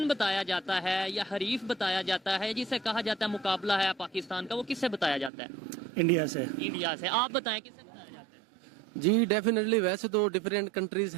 بتایا جاتا ہے یا حریف بتایا جاتا ہے، جسے کہا جاتا ہے مقابلہ ہے پاکستان کا، وہ کس سے بتایا جاتا ہے؟ انڈیا سے. انڈیا سے. آپ بتائیں کس سے بتایا جاتا ہے؟ جی ڈیفینیٹلی، ویسے تو ڈفرینٹ کنٹریز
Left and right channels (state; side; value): drops out; left; at 5.3 s